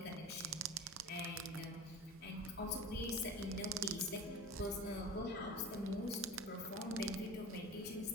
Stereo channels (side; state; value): both; normal; correlation 0.35